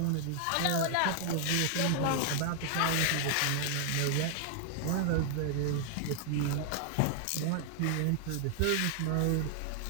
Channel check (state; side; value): different; both; correlation 0.00